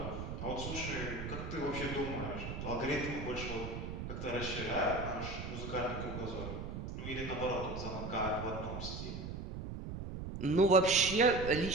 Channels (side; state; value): right; noise; rumble, 6 dB below the sound